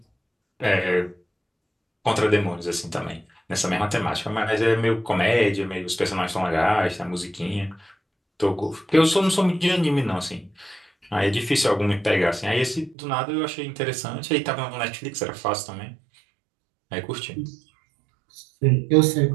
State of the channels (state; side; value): drops out; left; at 13.0 s